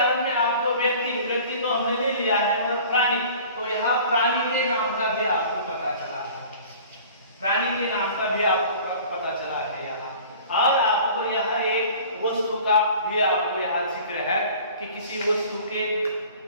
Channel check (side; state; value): both; inverted; correlation -0.45